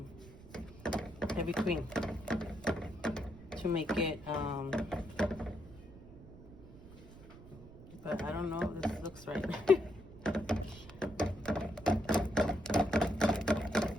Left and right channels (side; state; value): right; noise; rumble, 18 dB below the sound